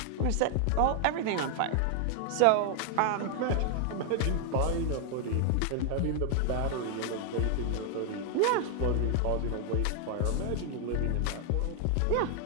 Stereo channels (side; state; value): both; different; correlation 0.00